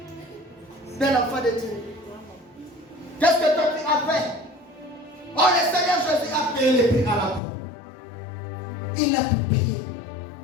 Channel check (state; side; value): drops out; right; at 7.4 s